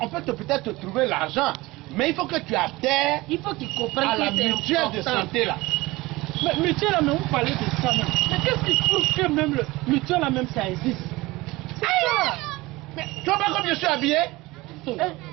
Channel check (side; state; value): left; quieter; 20.7 dB